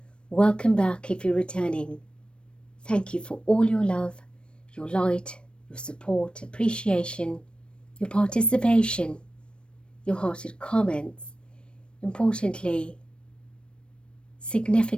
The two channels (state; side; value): late; right; 0.056 ms